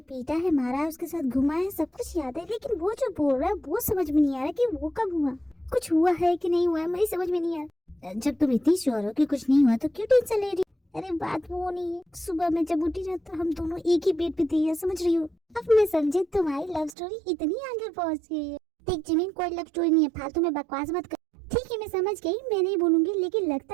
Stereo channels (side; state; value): left; drops out; at 16.9 s